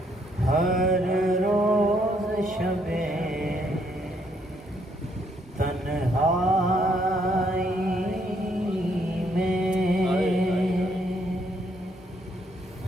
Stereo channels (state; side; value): normal; both; correlation 0.70